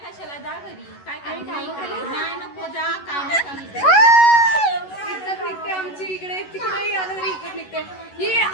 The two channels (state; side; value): late; right; 11 ms